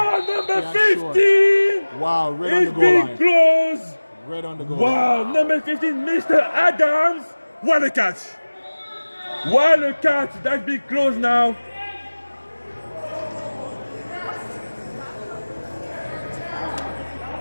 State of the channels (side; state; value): both; inverted; correlation -1.00